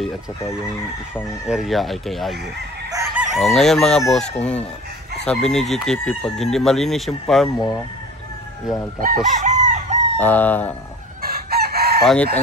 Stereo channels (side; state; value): both; normal; correlation 0.41